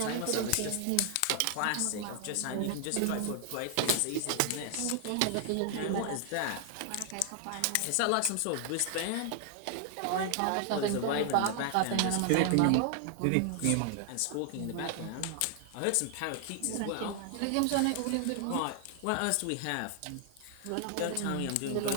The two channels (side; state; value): both; different; correlation 0.00